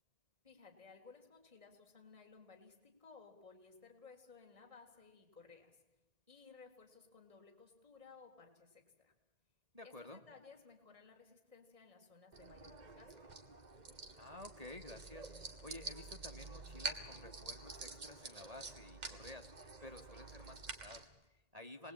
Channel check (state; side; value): late; left; 2.1 ms